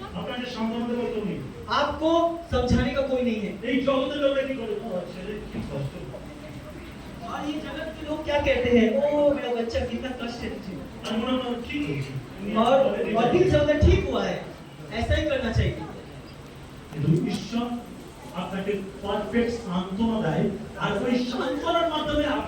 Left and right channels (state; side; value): identical; both; correlation 1.00